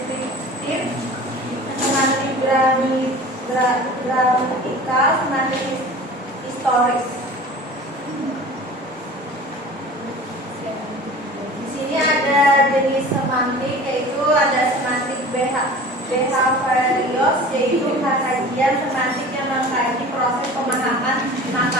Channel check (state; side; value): normal; both; correlation 0.40